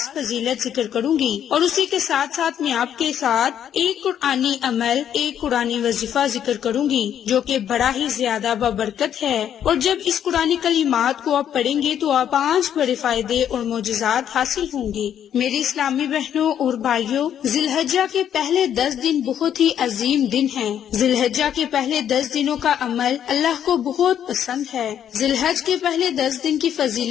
فضیلت ذکر کروں گی، اور اسی کے ساتھ ساتھ میں آپ کے ساتھ ایک قرآنی عمل، ایک قرآنی وظیفہ ذکر کروں گی جو کہ بڑا ہی زیادہ بابرکت ہے، اور جب اس قرآنی کلمات کو آپ پڑھیں گے تو آپ 5 بڑے فائدے اور معجزات حاصل ہوں گے۔ میری اسلامی بہنوں اور بھائیوں، ذی الحجہ کے پہلے 10 دن بہت ہی عظیم دن ہیں۔ ذی الحجہ کے پہلے 10 دنوں کا عمل اللہ کو بہت پسند ہے۔ ذی الحج کے پہلے 10 دن کی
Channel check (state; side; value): quieter; right; 9.6 dB